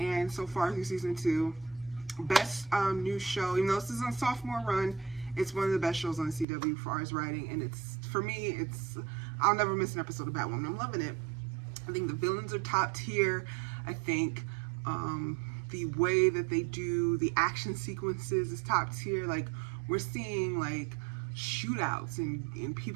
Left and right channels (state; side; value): drops out; left; at 6.5 s